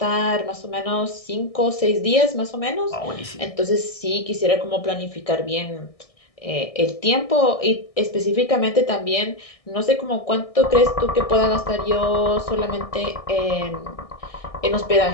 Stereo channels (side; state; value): right; late; 1.6 ms